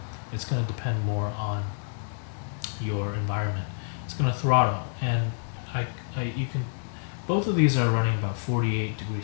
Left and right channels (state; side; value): silent; right; 57 dB below the other